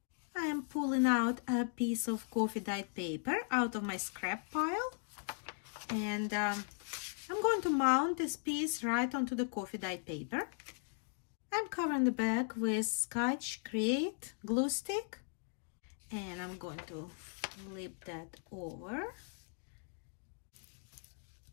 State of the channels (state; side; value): silent; right; 52 dB below the other